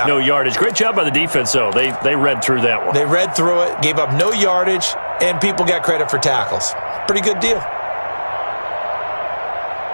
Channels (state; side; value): inverted; both; correlation -1.00